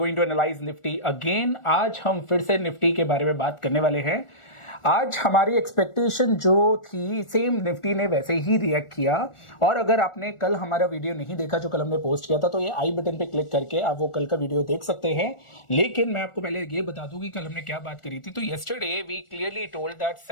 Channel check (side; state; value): right; late; 1.4 ms